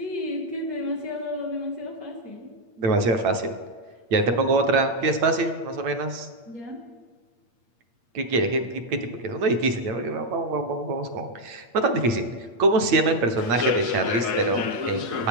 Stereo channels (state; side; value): late; left; 8.6 ms